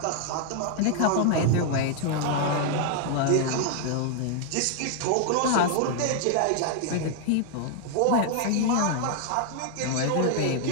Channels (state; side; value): different; both; correlation 0.00